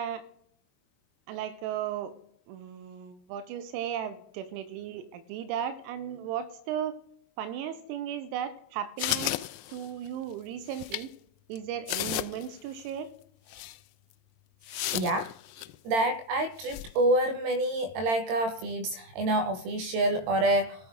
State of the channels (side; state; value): left; late; 21 ms